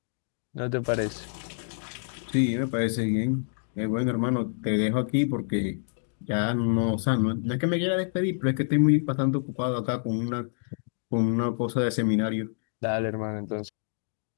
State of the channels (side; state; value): right; silent; digital silence